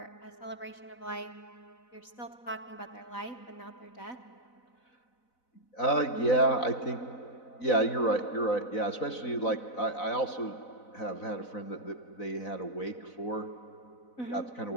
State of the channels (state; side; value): late; right; 4.0 ms